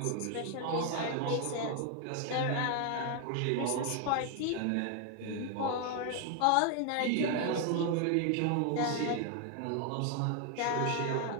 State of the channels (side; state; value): both; different; correlation 0.00